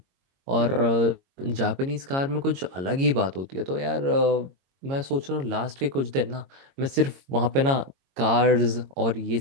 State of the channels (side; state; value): left; late; 22 ms